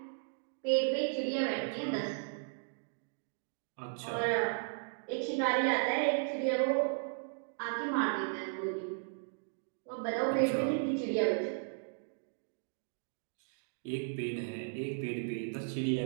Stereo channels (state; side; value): silent; left; digital silence